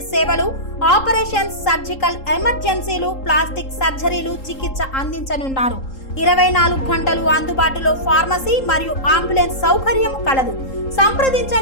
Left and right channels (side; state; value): right; late; 3.8 ms